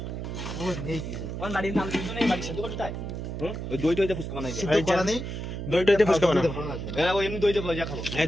দই টইতে ফুচকা বানাই, দই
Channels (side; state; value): right; noise; hum, 6 dB below the sound